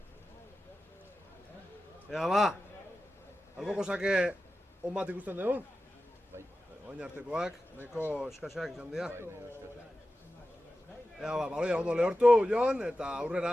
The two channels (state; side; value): normal; both; correlation 0.94